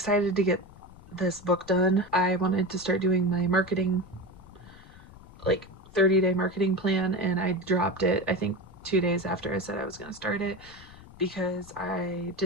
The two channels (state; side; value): noise; left; rumble, 20 dB below the sound